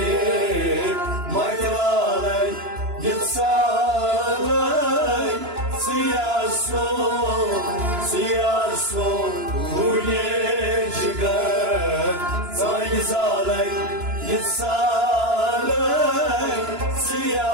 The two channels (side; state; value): left; late; 2.9 ms